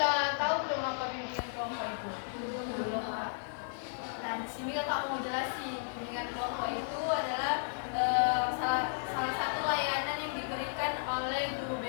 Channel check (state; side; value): silent; right; digital silence